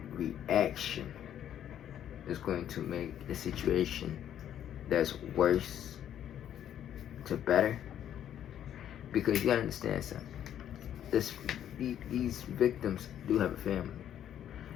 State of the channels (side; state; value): right; quieter; 10.4 dB